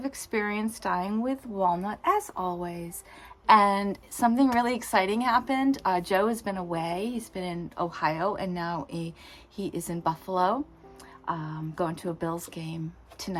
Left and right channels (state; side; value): identical; both; correlation 1.00